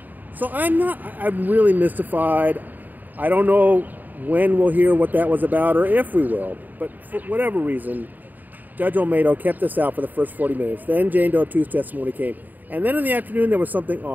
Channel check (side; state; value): left; late; 0.086 ms